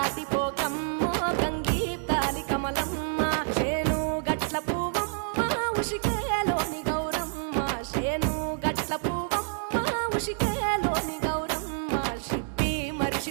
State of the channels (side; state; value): left; silent; 59 dB below the other